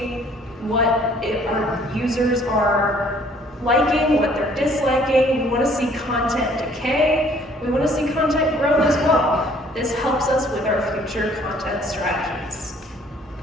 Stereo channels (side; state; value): both; normal; correlation 0.59